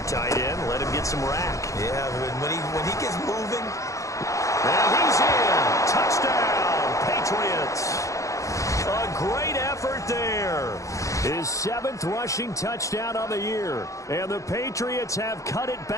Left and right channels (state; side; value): late; right; 0.15 ms